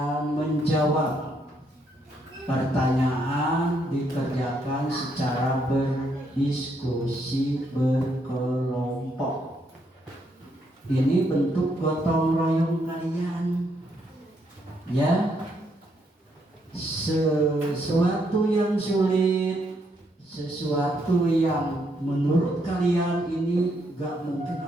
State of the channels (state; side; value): normal; both; correlation 0.74